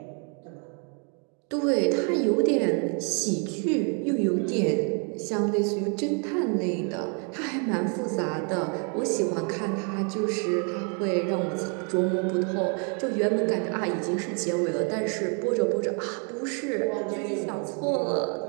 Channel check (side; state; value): left; quieter; 38.5 dB